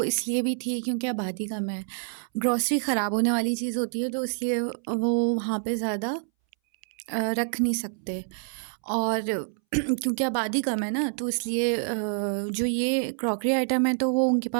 इसलिए भी थी क्योंकि आबादी कम है। ग्रॉसरी ख़राब होने वाली चीज़ होती है तो इसलिए वो वहाँ पे ज़्यादा रख नहीं सकते, और क्योंकि आबादी कम है ना, तो इसलिए जो ये क्रॉकरी आइटम है तो वो उनके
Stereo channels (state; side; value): silent; left; 60 dB below the other